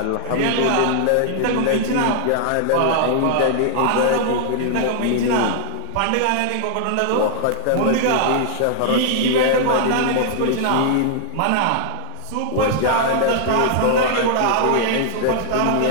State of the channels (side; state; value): both; different; correlation -0.01